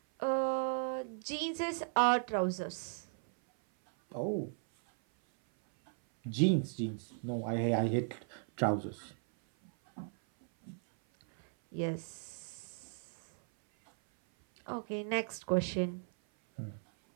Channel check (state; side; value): silent; left; 54 dB below the other